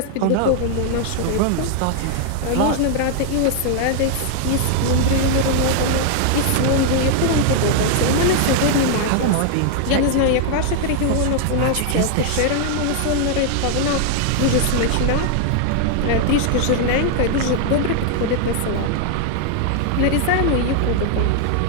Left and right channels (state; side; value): different; both; correlation 0.00